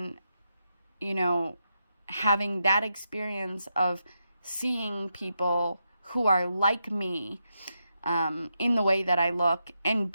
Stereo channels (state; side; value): inverted; both; correlation -0.84